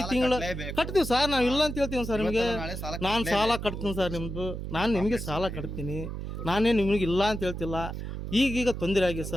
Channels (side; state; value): right; noise; hum, 6 dB below the sound